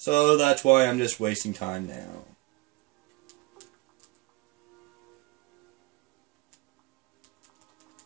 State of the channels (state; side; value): quieter; left; 22.1 dB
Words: that's why I'm just wasting time now.